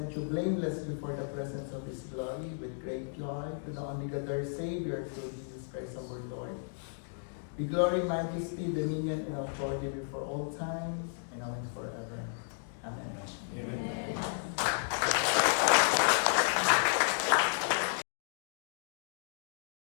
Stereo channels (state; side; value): silent; right; digital silence